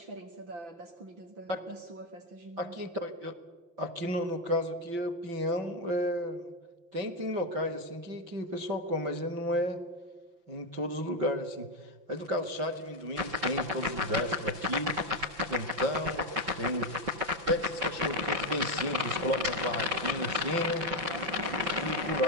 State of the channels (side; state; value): left; late; 5.8 ms